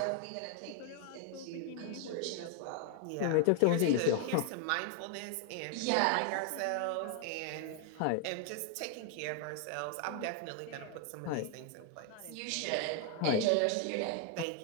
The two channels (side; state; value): both; different; correlation 0.00